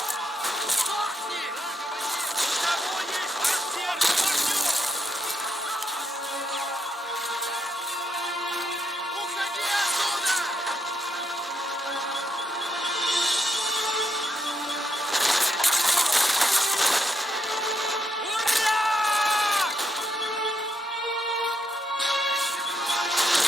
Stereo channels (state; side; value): normal; both; correlation 0.79